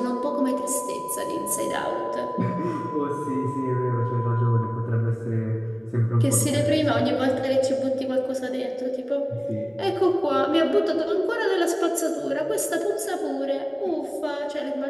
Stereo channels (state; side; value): identical; both; correlation 1.00